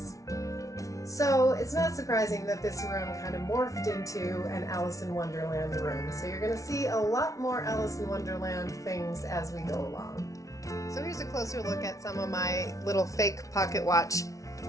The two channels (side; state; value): right; late; 0.16 ms